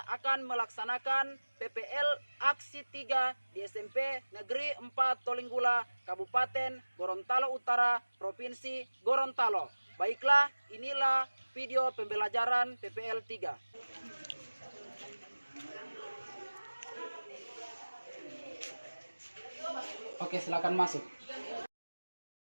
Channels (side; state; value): both; inverted; correlation -1.00